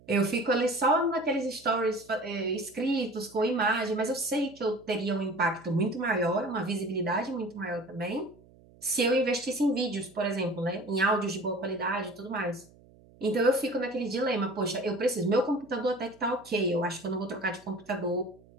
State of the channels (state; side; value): noise; right; hum, 26 dB below the sound